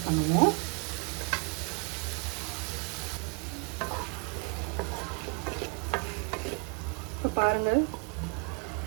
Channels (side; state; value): left; quieter; 35.1 dB